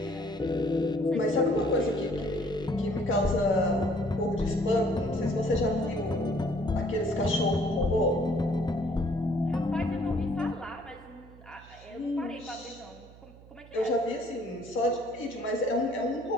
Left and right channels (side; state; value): right; noise; hum, 21 dB below the sound